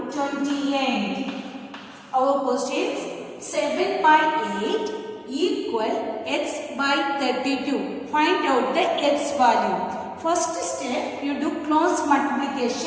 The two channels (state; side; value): identical; both; correlation 1.00